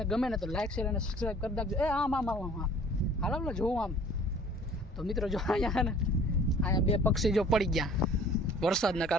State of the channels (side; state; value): both; normal; correlation 0.51